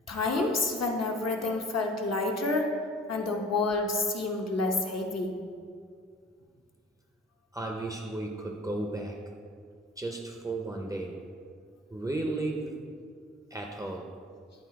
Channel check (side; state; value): both; normal; correlation 0.45